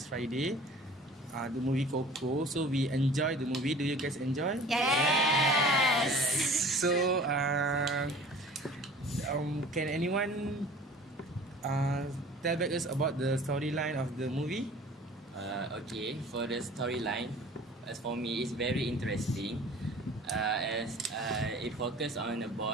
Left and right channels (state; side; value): normal; both; correlation 0.45